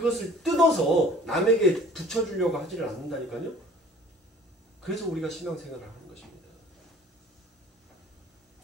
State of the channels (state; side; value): normal; both; correlation 0.50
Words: 뜯어서 남에게 붙여주려고 하지를 않는다니까요. 그래서 우리가 신앙생활을 하는 것입니다.